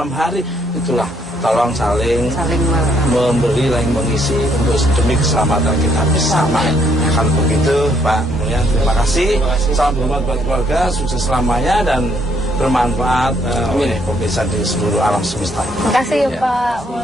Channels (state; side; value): normal; both; correlation 0.69